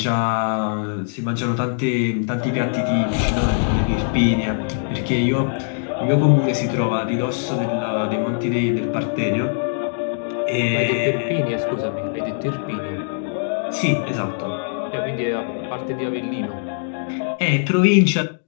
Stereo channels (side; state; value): right; silent; digital silence